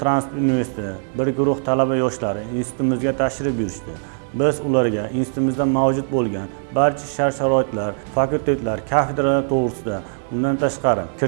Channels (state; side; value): silent; left; digital silence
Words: transport universiteti bir guruh talaba yoshlari institutimizga tashrif buyurishdi. Biz ularga institutimizda mavjud bo'lgan barcha shart-sharoitlar, fakultetlar, kafedralar to'g'risida, undan tashqari